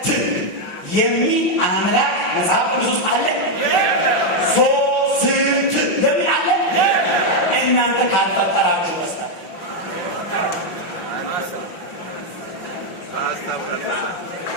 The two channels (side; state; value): right; late; 5.9 ms